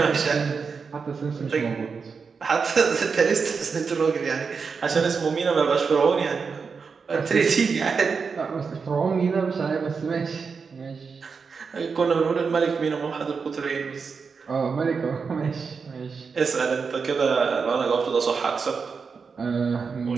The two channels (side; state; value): left; quieter; 5.3 dB